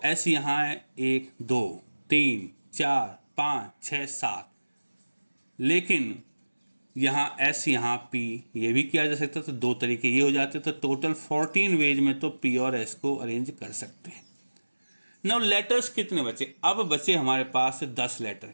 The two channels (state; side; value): inverted; both; correlation -1.00